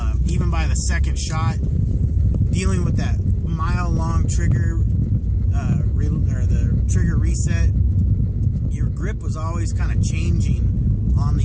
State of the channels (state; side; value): identical; both; correlation 1.00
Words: even by the second shot, dealing with that mile-long trigger, or the trigger reset, your grip was always kind of changing on the